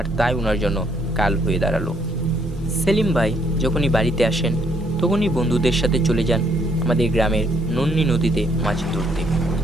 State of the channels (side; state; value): both; normal; correlation 0.69